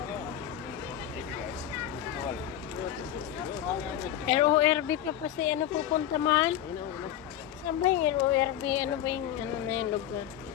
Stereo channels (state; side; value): quieter; right; 11.4 dB